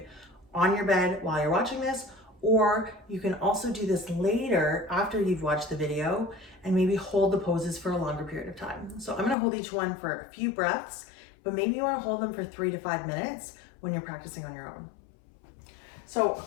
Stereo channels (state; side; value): drops out; right; at 9.3 s